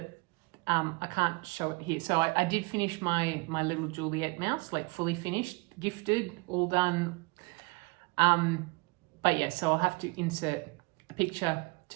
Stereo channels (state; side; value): quieter; left; 27.5 dB